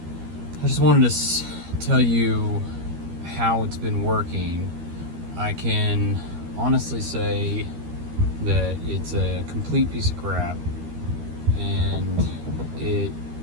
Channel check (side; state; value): left; late; 13 ms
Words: I just wanted to tell you how it's been working. I can honestly say that it's a complete piece of crap, and